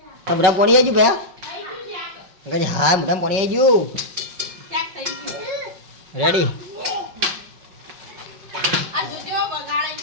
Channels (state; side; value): late; left; 5.4 ms